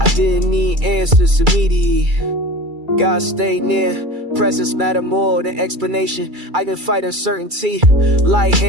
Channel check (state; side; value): late; left; 2.3 ms